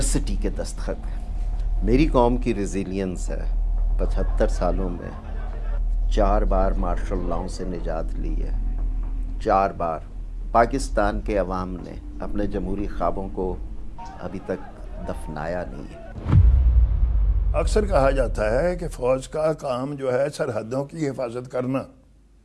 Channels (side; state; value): both; identical; correlation 1.00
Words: کے دستخط ہیں۔ میری قوم کی ریزیلینس ہے، 75 سالوں میں 4 بار مارشل لاؤ سے نجات لی ہے، 4 بار۔ پاکستان کے عوام نے اپنے جمہوری خوابوں کو ابھی تک دفنایا نہیں ہے۔ اکثر کہا جاتا ہے کہ فوج کا کام جو ہے سرحدوں کی حفاظت کرنا،